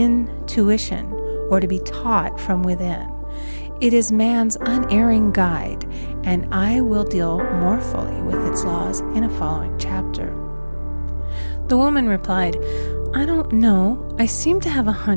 or to be taught from within. It is man's unerring guide, and I will deal more fully with its laws in a following chapter. The woman replied, "I don't know. I seem to have a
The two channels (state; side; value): inverted; both; correlation -1.00